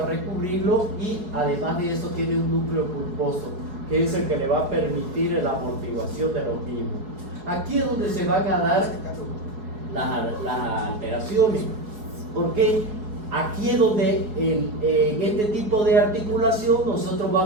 a recubrirlo, y además de eso tiene un núcleo pulposo, que es el que le va a permitir la amortiguación de los mismos. Aquí es donde se van a dar las alteraciones, porque aquí es donde en este tipo de articulación nosotros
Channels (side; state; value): left; late; 4.8 ms